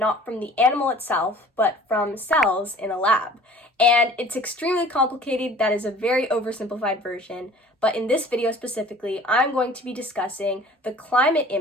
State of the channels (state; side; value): normal; both; correlation 0.48